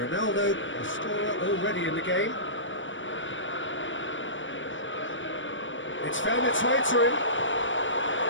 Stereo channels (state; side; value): late; right; 0.56 ms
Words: a scorer already in the game. It's found its way to him.